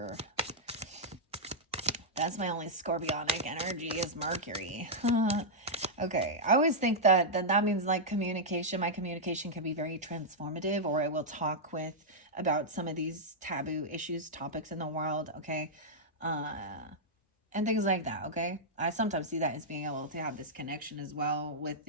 That's my only scorpionic energy is Mercury. Okay, I always think that means like communication. My communication can be very transformative, or I will talk about some of these taboo issues, topics in the world, okay? And things like that, okay? I sometimes see that as being able to have this connection as well with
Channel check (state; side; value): normal; both; correlation -0.08